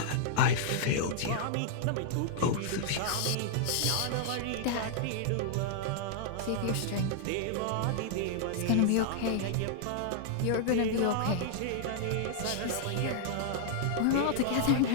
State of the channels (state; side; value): different; both; correlation -0.01